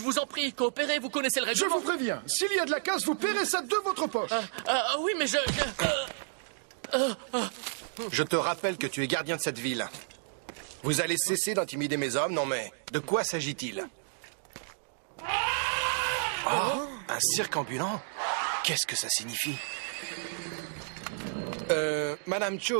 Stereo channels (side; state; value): left; silent; digital silence